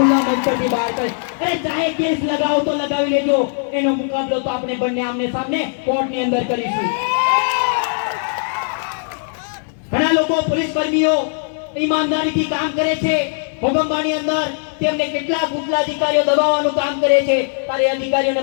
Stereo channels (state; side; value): silent; right; 63 dB below the other